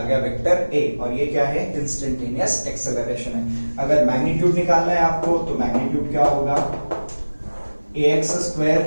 गया, वेक्टर a, और ये क्या है, इंस्टेंटेनियस एक्सेलरेशन है। अगर मैग्नीट्यूड निकालना है आपको तो मैग्नीट्यूड क्या होगा, ax square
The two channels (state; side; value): inverted; both; correlation -1.00